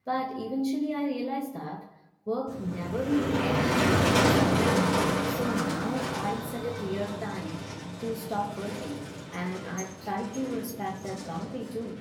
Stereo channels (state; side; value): identical; both; correlation 1.00